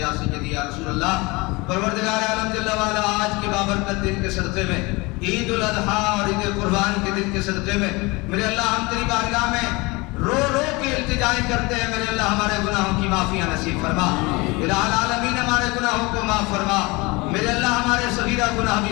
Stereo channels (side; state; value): right; quieter; 24.6 dB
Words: سیدی یا رسول اللہ۔ پروردگار عالم جل وعلا آج کے بابرکت دن کے صدقے میں، عید الاضحیٰ اور عید قربان کے دن کے صدقے میں میرے اللہ ہم تیری بارگاہ میں رو رو کے التجائیں کرتے ہیں، میرے اللہ ہمارے گناہوں کی معافیاں نصیب فرما، الہ العالمین ہمارے گناہوں کو معاف فرما، میرے اللہ ہمارے صغیرہ گناہ